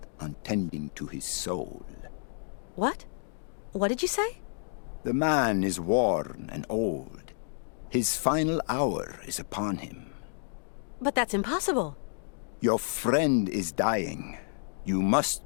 on tending to his soul. What? What did you say? The man is worn and old. His final hour is upon him. But that's impossible. Your friend is dying. You must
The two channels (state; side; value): silent; right; digital silence